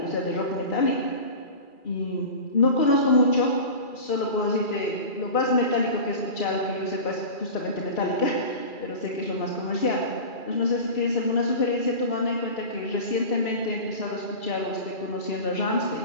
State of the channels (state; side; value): late; right; 2.3 ms